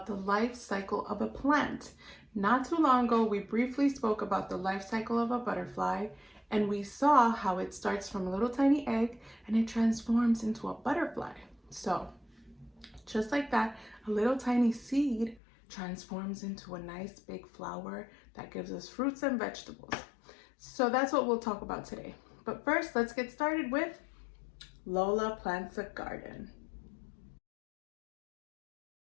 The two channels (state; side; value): drops out; right; at 15.4 s